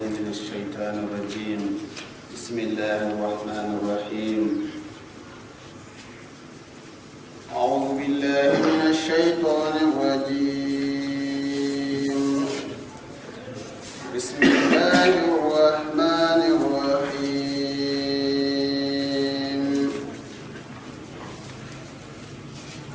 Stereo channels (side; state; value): both; identical; correlation 1.00